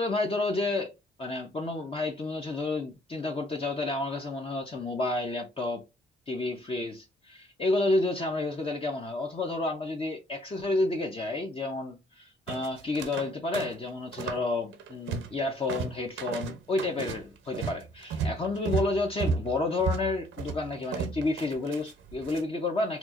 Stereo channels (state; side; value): normal; both; correlation 0.62